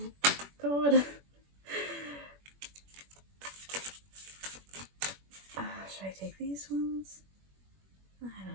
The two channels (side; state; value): left; late; 21 ms